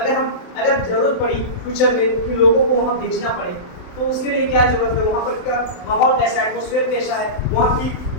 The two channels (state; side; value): late; right; 27 ms